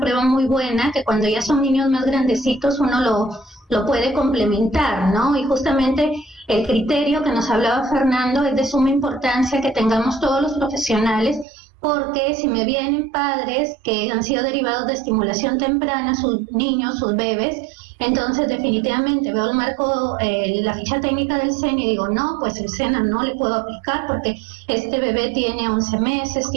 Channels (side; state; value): left; drops out; at 11.5 s